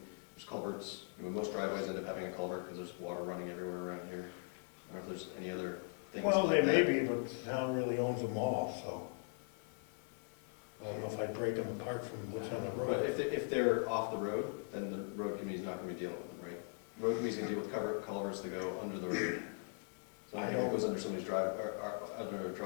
there's culverts, I mean, most driveways end up having a culvert because there's water running everywhere around here. I don't know if there's any other things like that. Well, they may be, but the town really owns them all, so I don't know if I'd break them apart from what's on the But road. if they're off the road, then the road committee's not gonna be dealing with them, right? Road committee's gonna deal with culverts that go under the road. So anything that goes under somebody's under a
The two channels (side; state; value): right; silent; 51 dB below the other